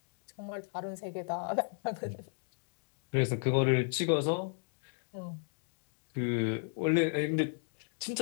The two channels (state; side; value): silent; right; 55 dB below the other